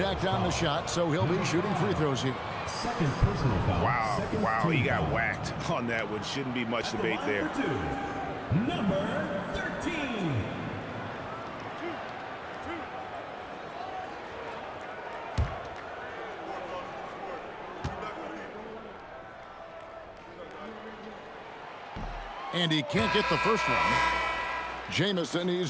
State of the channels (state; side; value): identical; both; correlation 1.00